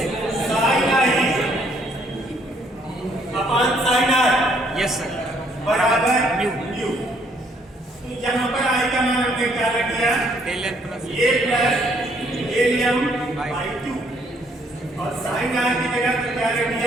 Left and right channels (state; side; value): normal; both; correlation 0.67